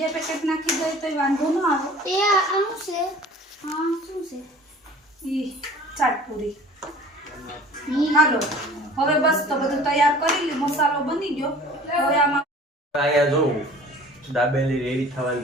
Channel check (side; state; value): both; normal; correlation 0.46